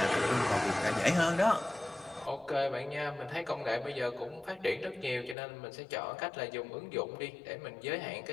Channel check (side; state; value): right; drops out; at 5.4 s